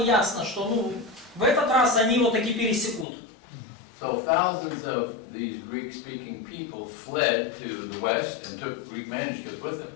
что в этот раз они его таки пересекут. So thousands of these Greek-speaking people fled to the west and took Greek manuscripts with them.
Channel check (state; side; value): drops out; right; at 3.1 s